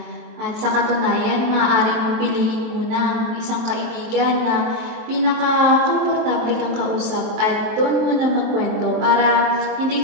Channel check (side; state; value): left; late; 23 ms